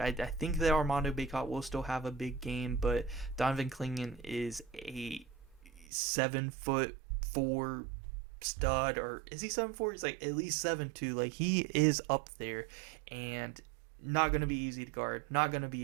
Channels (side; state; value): left; drops out; at 5.9 s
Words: think that Armando Bacot will still have a big game, but Donovan Clingan is a 7'4" stud, or is he 7'4"? He's like at least 7'2". Like, he is up there, and not going to be easy to guard. Not going to be